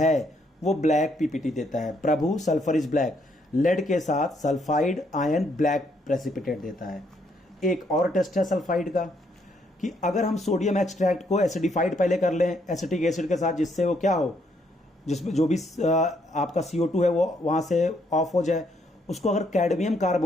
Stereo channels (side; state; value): both; normal; correlation 0.72